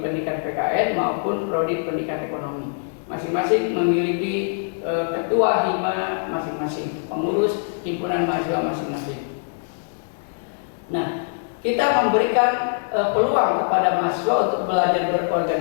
PKN maupun prodi pendidikan ekonomi. Masing-masing memiliki ketua hima masing-masing, pengurus himpunan mahasiswa masing-masing. Nah, kita memberikan peluang kepada mahasiswa untuk belajar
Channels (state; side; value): silent; right; digital silence